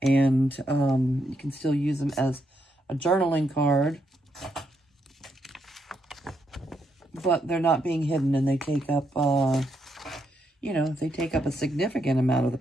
and you can still use them as a journaling card, but they're not being hidden and they take up, you know, they take up a significant amount of the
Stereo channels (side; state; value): both; normal; correlation 0.78